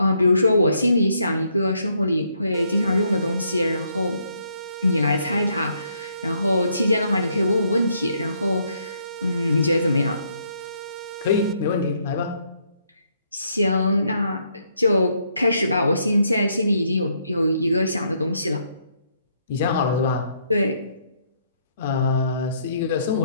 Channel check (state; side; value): inverted; both; correlation -0.72